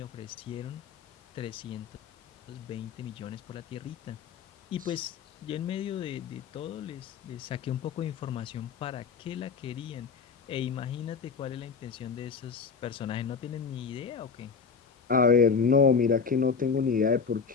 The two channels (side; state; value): right; quieter; 5.6 dB